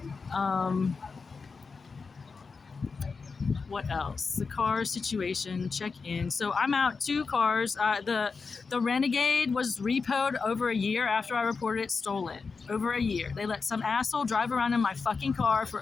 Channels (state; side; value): quieter; right; 4.8 dB